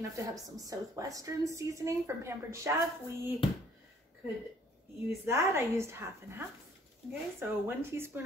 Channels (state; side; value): normal; both; correlation 0.59